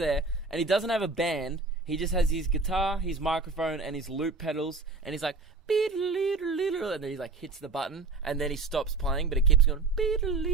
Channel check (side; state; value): left; quieter; 3.7 dB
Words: and he doesn't have a band. He just has his guitar, his microphone, and his loop pedals, and he's like, and then he like hits the button, and then he stops playing, but it keeps going, and